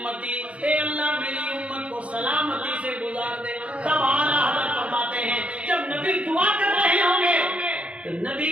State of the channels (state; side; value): late; left; 0.063 ms